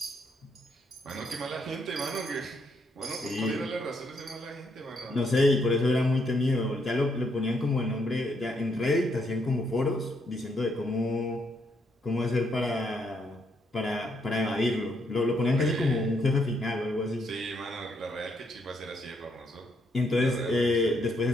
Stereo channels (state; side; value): normal; both; correlation 0.75